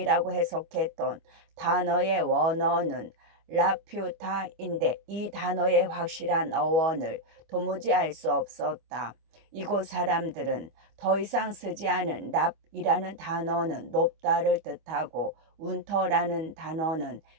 해석했던 단어의 원어는 라퓨타인데 이 단어의 확실한 어원을 도무지 알 수 없었다. 이곳 사람들은 더 이상 쓰지 않은 랍이라는 단어는 높다를 뜻하고 운터라는 단어는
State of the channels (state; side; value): late; left; 25 ms